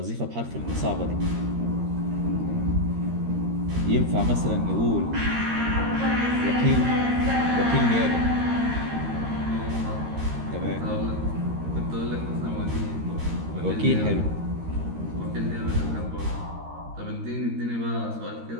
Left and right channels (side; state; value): left; late; 13 ms